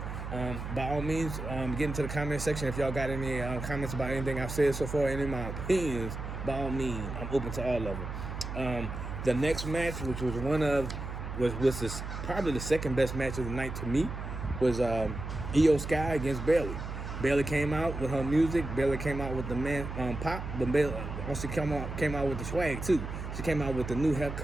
By all means, get into the comment section if y'all got any comments about anything I've said so far, any of my opinions. By all means, I'm open to all of them. The next match, which was probably the second best match of the night to me, was Io Sky against Bayley. Bayley came out with her music. Bayley came out with the pop, but Bayley also came out with the swag too. She came out with the new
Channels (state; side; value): noise; right; hum, 7 dB below the sound